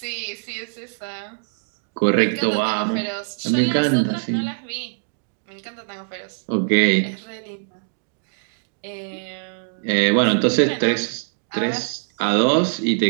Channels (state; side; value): silent; left; digital silence